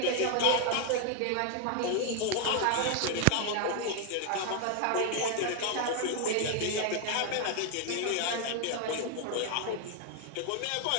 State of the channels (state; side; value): different; both; correlation 0.00